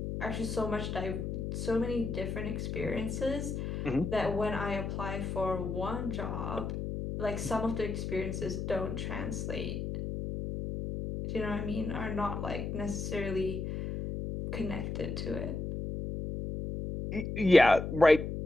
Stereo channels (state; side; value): noise; left; hum, 4 dB below the sound